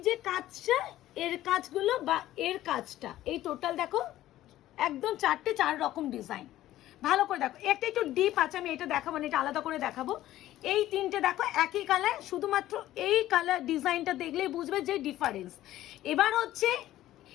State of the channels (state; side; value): quieter; right; 14.3 dB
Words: যে কাজটা, এর কাজগুলো বা এর কাজটা, এই টোটাল দেখো একদম 4 রকম ডিজাইন। ভালো করে দেখো, একটা একটু ডিপ আছে, আমি এটা দেখাবো না, এটা আলাদা করে দেখাবো। এই 3টে দেখো একই কালার, শুধুমাত্র এই কালার ডিজাইনটা দেখলেই বুঝবে যে ডিফারেন্স। এবার হচ্ছে